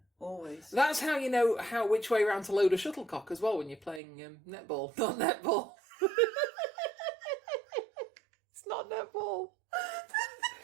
always. That's how you know which way round to load a shuttlecock as well when you're playing netball. Not netball. It's not netball.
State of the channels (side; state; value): left; drops out; at 4.0 s